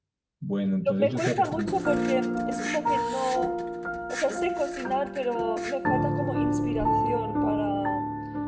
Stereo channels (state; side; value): identical; both; correlation 1.00